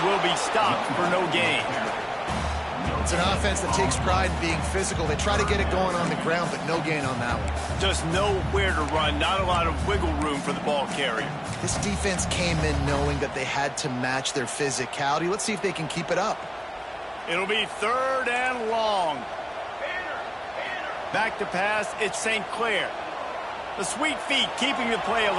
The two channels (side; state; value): both; identical; correlation 1.00